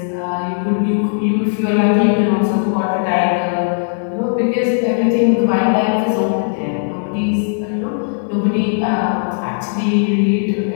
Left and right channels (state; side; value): silent; right; 62 dB below the other